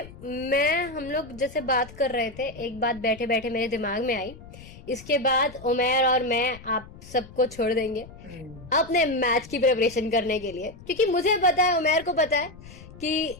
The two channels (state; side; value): noise; left; rumble, 18 dB below the sound